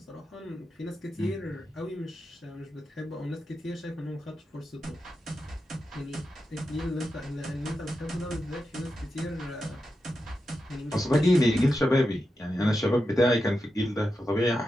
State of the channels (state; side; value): normal; both; correlation 0.89